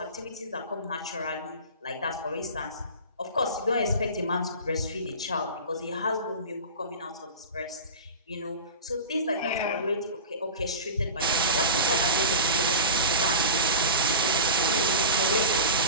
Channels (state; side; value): inverted; both; correlation -0.31